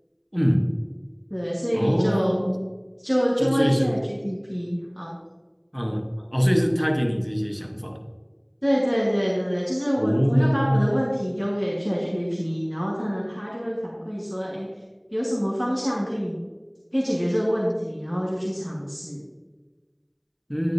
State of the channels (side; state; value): both; identical; correlation 1.00